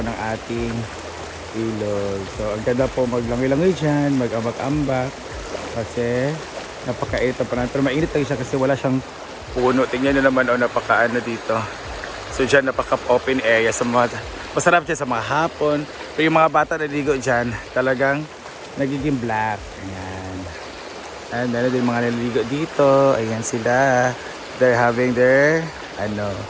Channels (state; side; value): identical; both; correlation 1.00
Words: ng ating ilog. So ang ganda po maglangoy-langoy dyan, mag-ambak-ambak kasi napakainit pa na. Pero mainit lang siya kasi wala siyang puno. Tingnan nyo naman napakaano dito. So dyan napaka-open area sa mga, masarap dyan sa mga hapon. Pero yung mga bata naliligo dyan talagang nagiging black. Ayan. And meron din mga naliligo dito. Ayan sila. They're having their